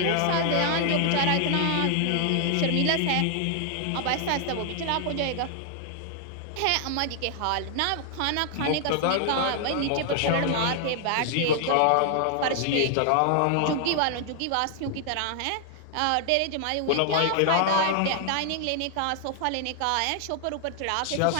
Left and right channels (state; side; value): different; both; correlation 0.00